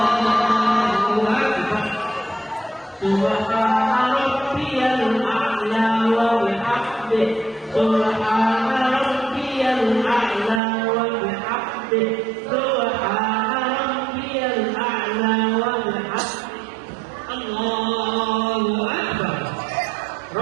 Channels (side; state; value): left; drops out; at 10.6 s